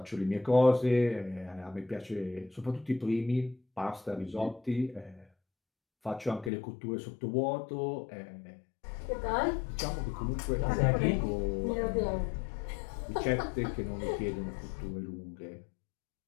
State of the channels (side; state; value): right; drops out; at 6.5 s